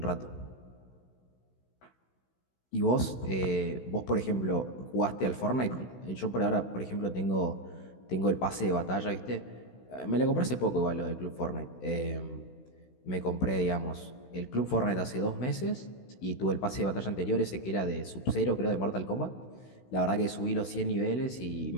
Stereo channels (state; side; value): late; right; 16 ms